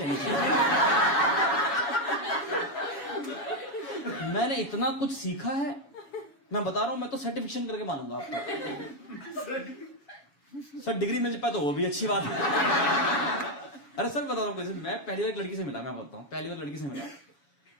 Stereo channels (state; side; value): late; right; 7.2 ms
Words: चाहिए। मैंने इतना कुछ सीखा है, मैं बता रहा हूं, मैं तो सर्टिफिकेशन करके मानूंगा आपको। सर डिग्री मिल जाए तो वो भी अच्छी बात है। अरे सर बता रहा हूँ, मैं पहली बार एक लड़की से मिला, मैं बताता हूँ, पहली बार लड़की से मिला